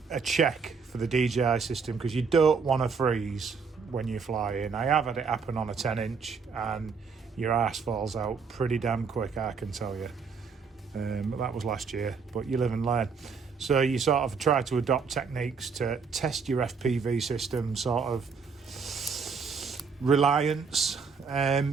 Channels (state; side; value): quieter; left; 5.4 dB